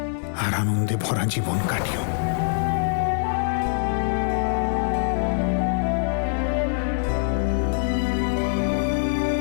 আর আনন্দে ভরা জীবন কাটিও।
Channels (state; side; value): silent; right; 63 dB below the other